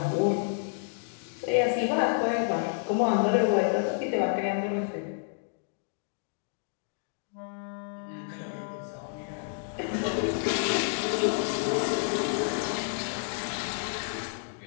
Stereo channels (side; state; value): right; silent; digital silence